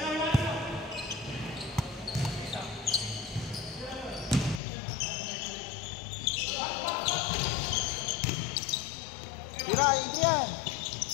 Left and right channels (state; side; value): drops out; right; at 4.6 s